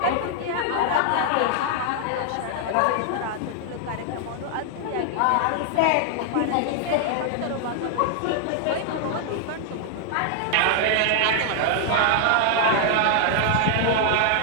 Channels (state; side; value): different; both; correlation 0.00